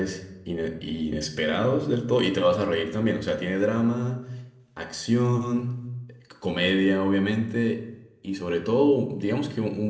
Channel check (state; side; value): identical; both; correlation 1.00